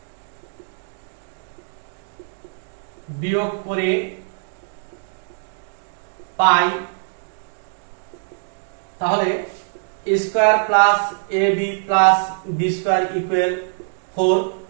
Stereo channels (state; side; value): silent; left; digital silence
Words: বিয়োগ করে পাই তাহলে square plus ab plus b square equal 4